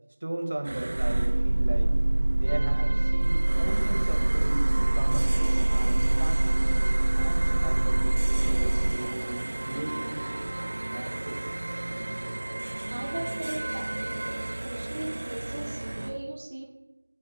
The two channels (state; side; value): inverted; both; correlation -1.00